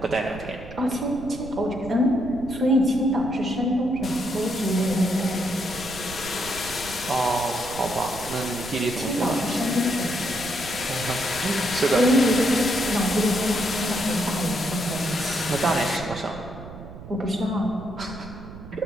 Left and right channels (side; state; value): right; noise; rumble, 14 dB below the sound